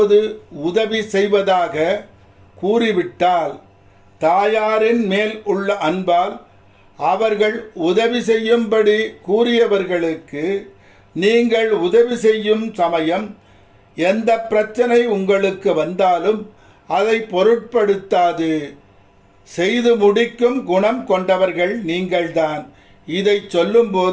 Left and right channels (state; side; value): identical; both; correlation 1.00